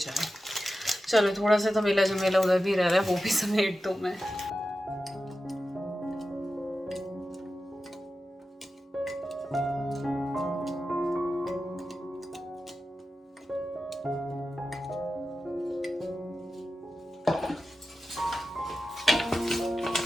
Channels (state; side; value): normal; both; correlation 0.92